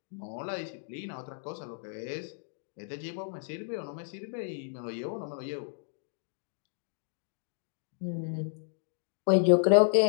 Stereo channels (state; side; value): silent; right; digital silence